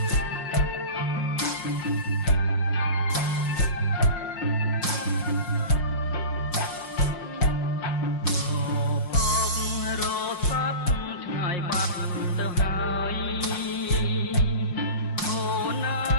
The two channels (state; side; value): late; right; 5.6 ms